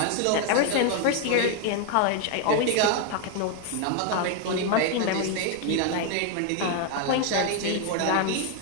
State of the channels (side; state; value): both; different; correlation 0.01